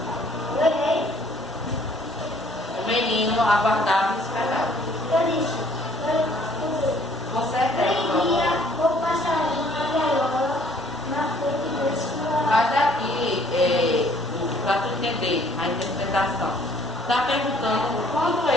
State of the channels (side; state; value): both; normal; correlation 0.60